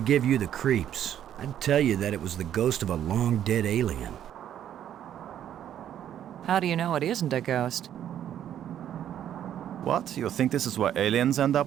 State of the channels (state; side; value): quieter; left; 10.5 dB